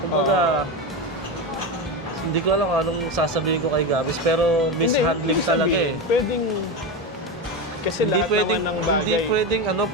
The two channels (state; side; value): normal; both; correlation 0.17